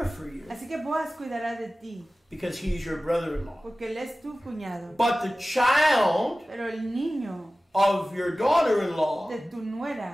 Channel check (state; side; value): normal; both; correlation 0.97